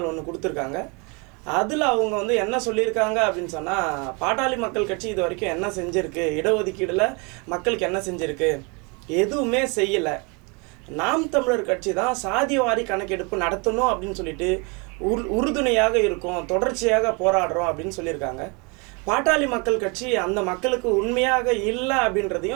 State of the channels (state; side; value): quieter; left; 31.3 dB